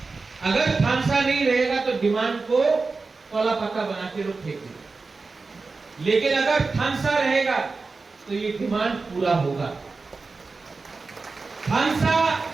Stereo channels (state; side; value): quieter; left; 4.1 dB